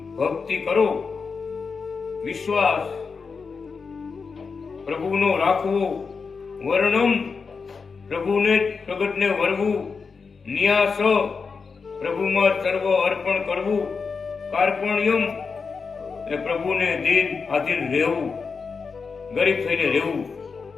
ભક્તિ કરો. વિશ્વાસ પ્રભુનો રાખવો, વર્ણમ પ્રભુને પ્રગટને વરવું, ન્યાસ પ્રભુમાં સર્વ અર્પણ કરવું, કાર્પણ્યમ એટલે પ્રભુને દિન આધીન રહેવું, ગરીબ થઈને રહેવું,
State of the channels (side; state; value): right; quieter; 5.1 dB